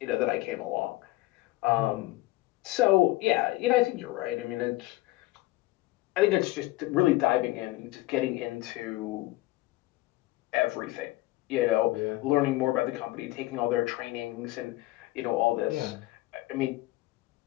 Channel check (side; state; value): right; quieter; 18.6 dB